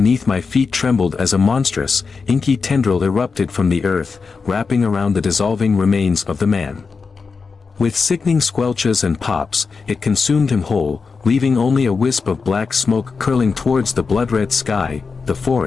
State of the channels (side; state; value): right; quieter; 4.9 dB